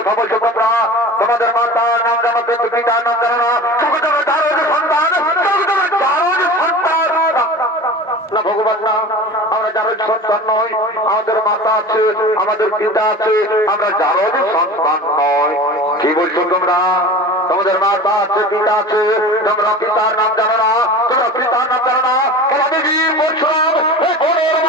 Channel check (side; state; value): both; normal; correlation 0.35